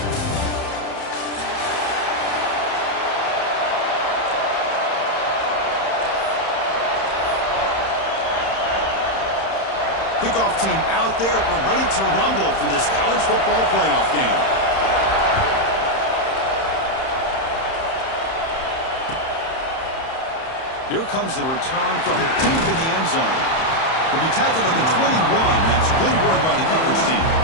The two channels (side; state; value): right; late; 31 ms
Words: Kickoff team out there. We're ready to rumble for this college football playoff game. Here comes the return from deep in the end zone. He'll be tackled at the 21. That's good work by the coverage team.